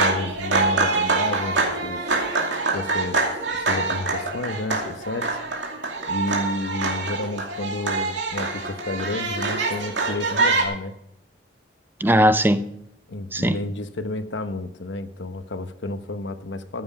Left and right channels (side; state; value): both; normal; correlation 0.10